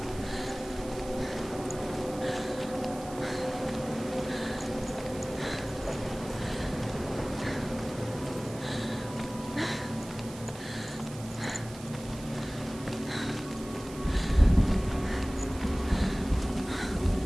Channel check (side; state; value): right; noise; hiss, 16 dB below the sound